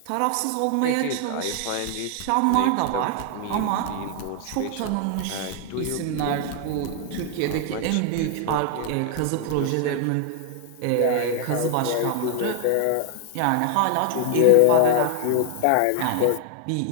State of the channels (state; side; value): different; both; correlation 0.00